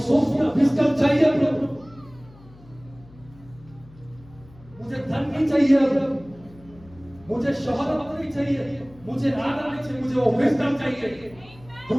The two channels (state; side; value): noise; left; hum, 23 dB below the sound